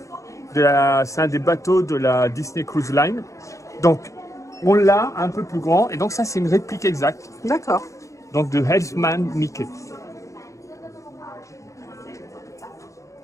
C'est un des bateaux de la Disney Cruise Line. Donc, on l'a un peu plus grand. Et donc, ça, c'est une réplique exacte. D'accord. Donc, de Helmsman Mickey.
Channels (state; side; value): late; right; 0.15 ms